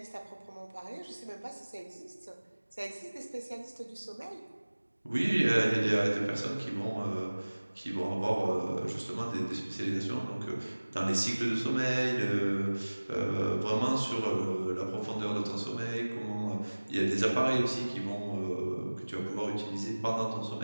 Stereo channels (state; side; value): inverted; both; correlation -1.00